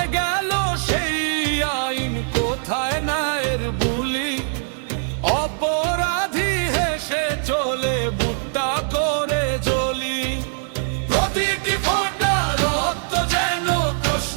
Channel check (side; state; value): left; silent; digital silence